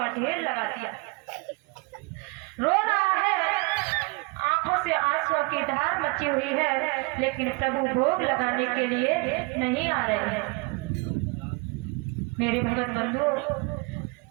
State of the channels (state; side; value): quieter; left; 28.2 dB